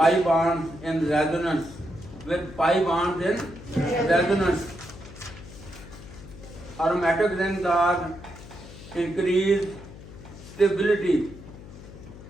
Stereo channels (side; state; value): left; noise; hum, 16 dB below the sound